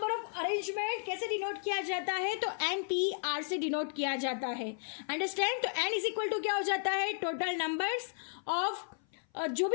of arrangement कैसे डिनोट किया जाता है? तो NPR से डिनोट किया जाता है। अंडरस्टैंड? तो n इज इक्वल टू क्या हो जाता है? टोटल नंबर्स ऑफ जो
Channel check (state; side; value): silent; right; 55 dB below the other